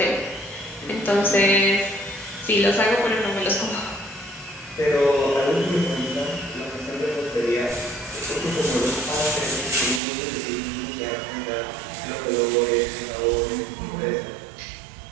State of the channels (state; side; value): drops out; left; at 10.0 s